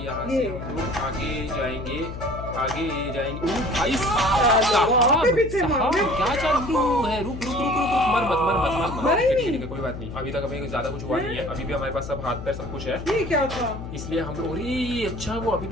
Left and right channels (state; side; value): noise; left; hum, 9 dB below the sound